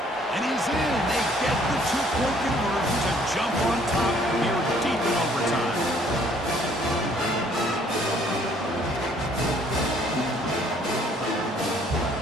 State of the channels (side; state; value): both; normal; correlation 0.61